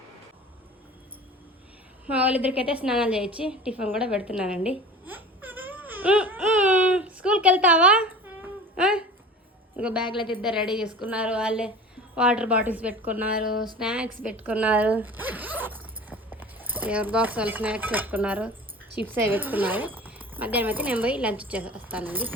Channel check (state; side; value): normal; both; correlation 0.39